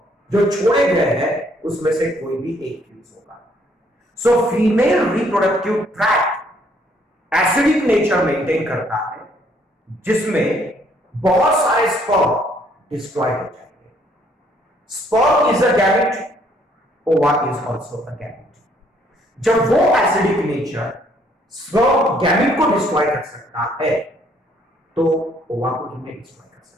जो छोड़े गए हैं उसमें से कोई भी एक फ्यूज होगा। So female reproductive tract acidic nature maintain करता है, जिसमें बहुत सारे स्पर्म डिस्ट्रॉय हो जाएंगे। स्पर्म इज अ गैमेट, ओवा इज आल्सो अ गैमेट। जब वो एसिडिक नेचर स्पर्म गैमेट को डिस्ट्रॉय कर सकता है तो ओवा को कितने डिस्ट्रॉय कर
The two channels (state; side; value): normal; both; correlation 0.66